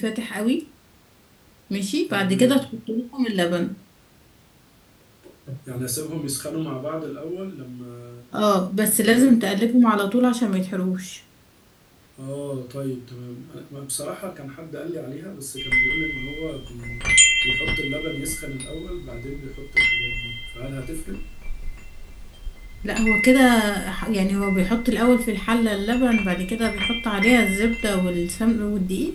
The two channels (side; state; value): both; identical; correlation 1.00